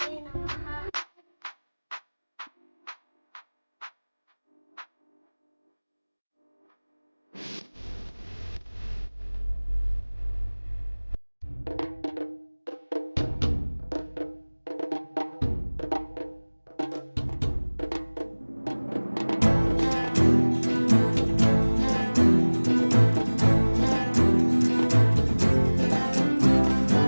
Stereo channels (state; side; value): inverted; both; correlation -1.00